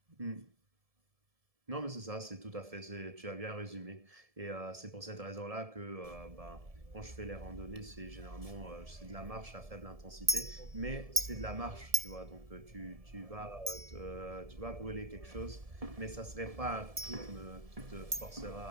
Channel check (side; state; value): left; late; 1.7 ms